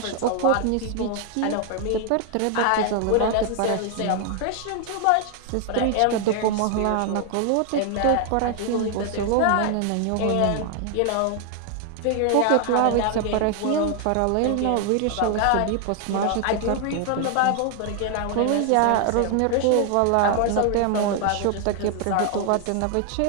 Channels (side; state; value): both; different; correlation 0.00